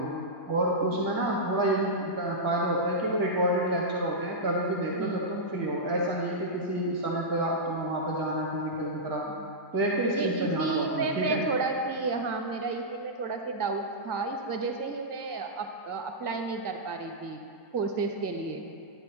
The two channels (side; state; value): left; late; 1.8 ms